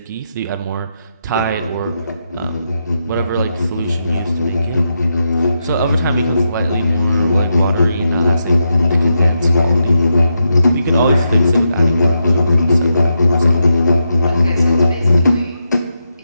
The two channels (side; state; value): both; inverted; correlation -0.85